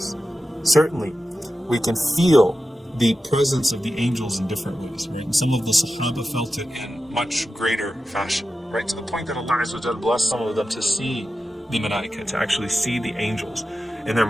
certainly we can feel the presence of the angels in different ways, right? And some of the Sahaba felt it in much greater fashion, right? To the point that Allah Azza wa Jal blessed some of them to see the Malaika, to actually see the angels in their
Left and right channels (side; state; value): both; normal; correlation 0.92